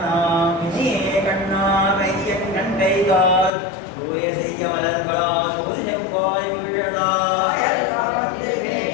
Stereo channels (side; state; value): right; drops out; at 3.5 s